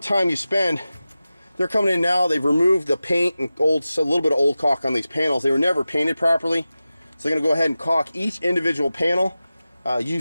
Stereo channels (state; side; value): inverted; both; correlation -0.95